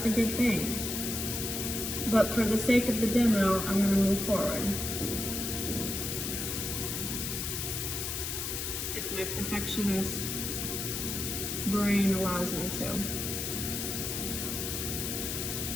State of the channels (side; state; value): left; noise; hiss, 3 dB below the sound